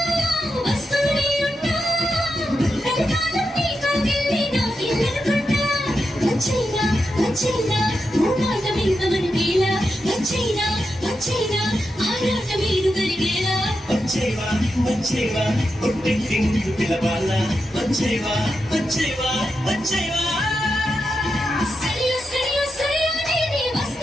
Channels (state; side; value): normal; both; correlation 0.87